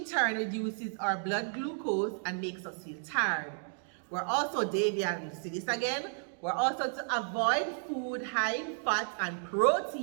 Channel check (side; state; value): left; silent; 56 dB below the other